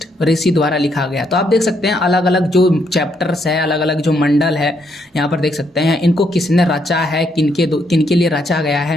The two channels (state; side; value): normal; both; correlation 0.75